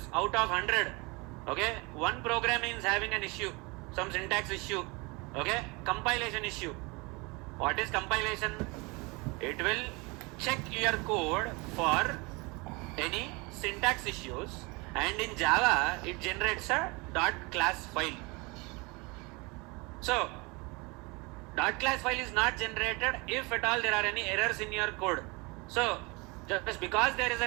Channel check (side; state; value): left; quieter; 26.9 dB